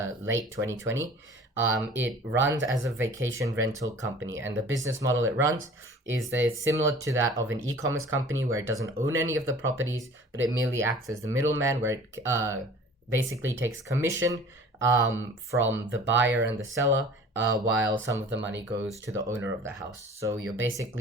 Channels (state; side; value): normal; both; correlation 0.46